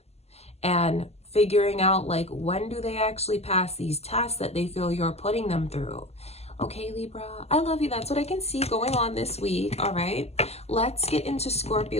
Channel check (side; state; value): right; late; 0.30 ms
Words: and figuring out like, when do they actually pass these tests that they feel you're putting them through. Okay, Libra, I love you. That's what I can see going on this week. All right, let's get into